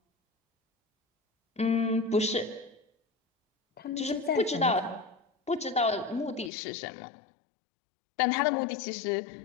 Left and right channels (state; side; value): drops out; right; at 6.5 s